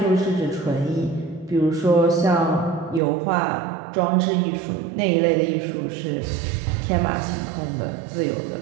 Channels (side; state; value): left; drops out; at 3.0 s